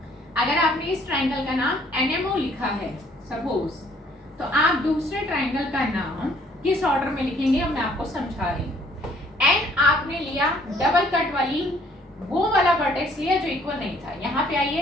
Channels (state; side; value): normal; both; correlation 0.61